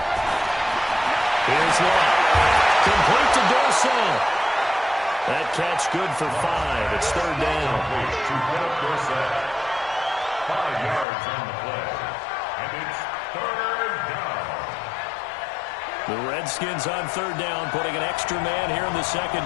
Here's Lott. Complete to Dorsett. That catch good for 5. It's 3rd down. 5 yards on the play. And it's 3rd down. The Redskins on 3rd down, putting an extra man here in the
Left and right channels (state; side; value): drops out; right; at 11.1 s